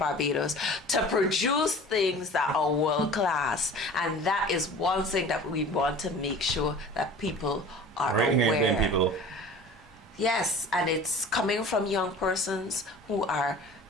to produce things that are world class, and that is one thing that we want to make sure that people are aware. People. Yes, and it's coming from young persons who are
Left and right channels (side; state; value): both; normal; correlation 0.42